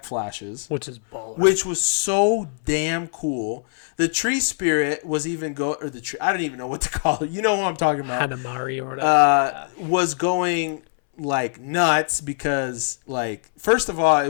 flashes, which is baller. which was so damn cool. The tree spirit was even or the tree. I don't even know what to call it. You know what I'm talking about? Hanamari or whatever. Was going like nuts because, like, first of all, it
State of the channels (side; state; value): right; silent; 63 dB below the other